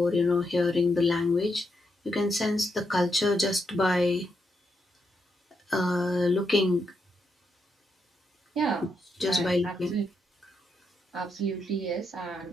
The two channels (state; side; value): normal; both; correlation 0.81